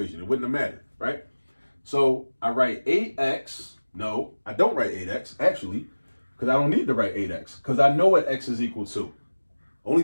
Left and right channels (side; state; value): both; inverted; correlation -1.00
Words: It wouldn't have mattered, right? So I write 8x. No, I don't write 8x, actually, because I don't need to write 8x, because I know what x is equal to. Only